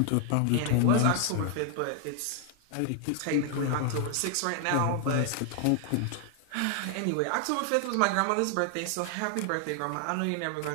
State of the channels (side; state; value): both; different; correlation 0.00